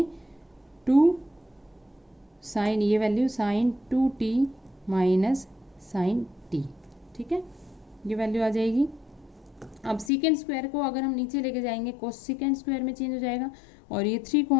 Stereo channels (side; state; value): right; drops out; at 10.1 s